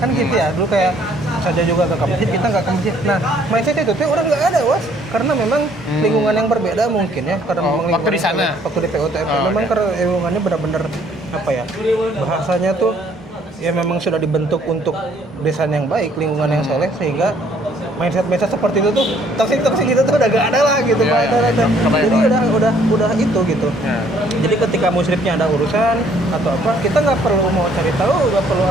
kan gitu ya. Dulu kayak saja juga ke masjid, kita nggak ke masjid. Nah, mindset itu tuh orang nggak ada was, karena memang lingkungan yang berbeda mungkin ya, karena memang waktu di sana, waktu di PUTM memang karena lingkungannya benar-benar apa ya, bahasanya tuh ya memang sudah dibentuk untuk desain yang baik, lingkungan yang soleh, sehingga mindset seperti itu tuh toksik itu tuh udah gak ada lah gitu. Jadi udah itu gitu. Jadi ketika musyrifnya ada urusan atau apa, kita nggak perlu mau cari tahu, nggak perlu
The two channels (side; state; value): both; normal; correlation 0.62